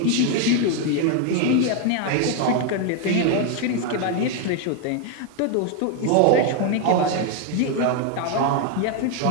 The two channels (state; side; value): different; both; correlation 0.01